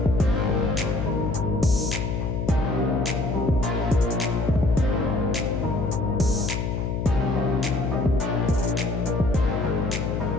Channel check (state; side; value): noise; left; hum, 1 dB below the sound